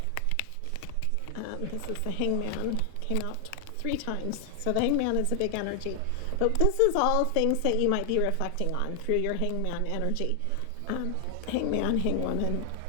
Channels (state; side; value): different; both; correlation 0.00